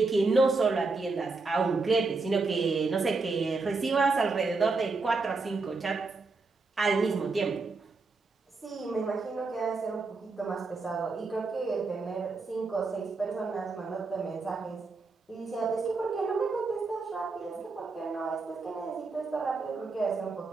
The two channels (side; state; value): left; quieter; 3.9 dB